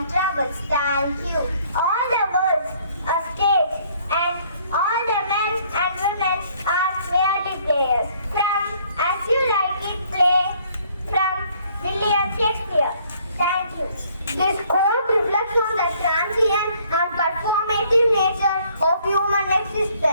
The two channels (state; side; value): inverted; both; correlation -0.62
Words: troubles. Thank you. All the worlds, a stage, and all the men and women are merely players. From As You Like It play from William Shakespeare. Thank you. This quote reflects on the transient and performative nature of human